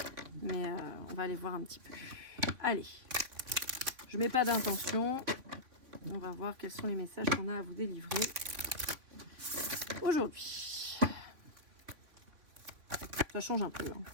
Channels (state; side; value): late; left; 3.7 ms